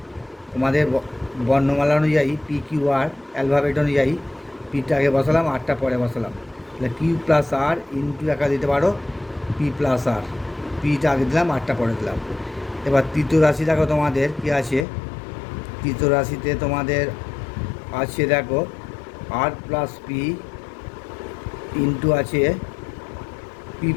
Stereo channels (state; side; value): drops out; right; at 14.9 s